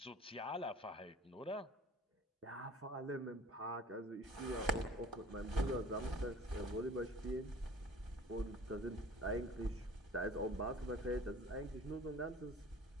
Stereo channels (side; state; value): both; normal; correlation 0.45